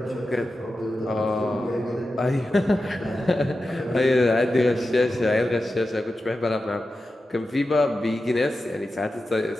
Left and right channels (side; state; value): both; normal; correlation 0.92